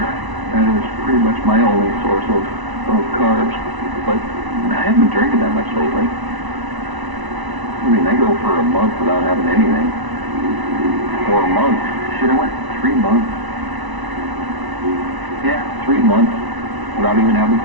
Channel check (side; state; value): left; late; 1.0 ms